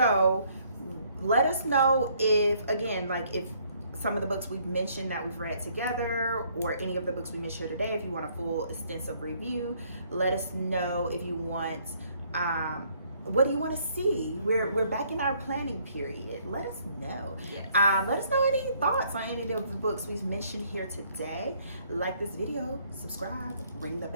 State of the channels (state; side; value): inverted; both; correlation -0.65